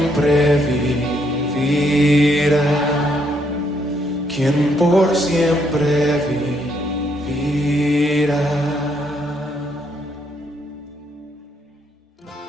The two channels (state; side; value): normal; both; correlation 0.73